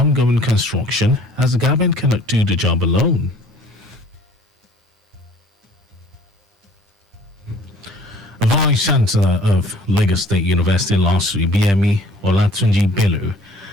construction, as the government cannot do the job alone. Vice Chancellor of Lagos State University LASU, BME Olatunji Bello,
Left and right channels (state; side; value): normal; both; correlation 0.53